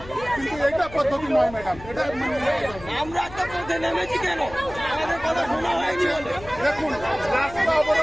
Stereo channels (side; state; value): left; noise; hum, 16 dB below the sound